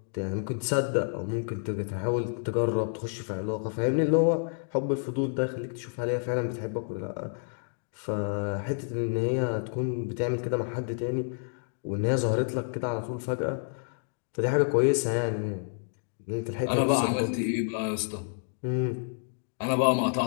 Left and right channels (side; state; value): right; silent; digital silence